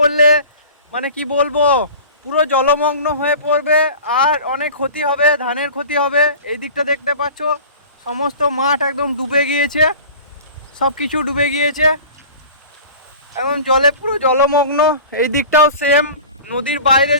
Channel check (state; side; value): inverted; both; correlation -0.39